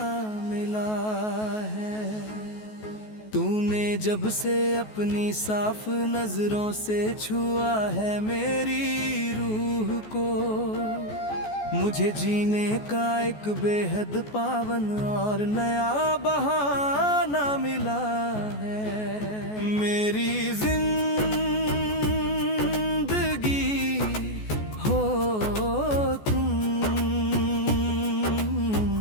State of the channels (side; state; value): right; late; 14 ms